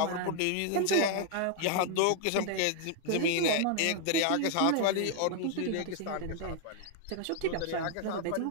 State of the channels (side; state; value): both; different; correlation 0.00